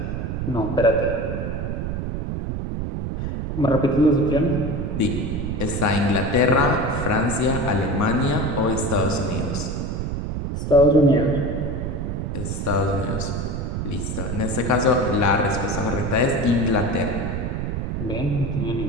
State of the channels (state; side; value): noise; right; rumble, 3 dB below the sound